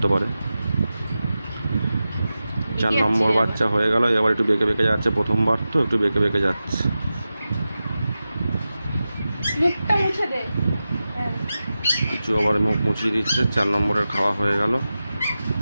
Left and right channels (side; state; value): both; inverted; correlation -0.93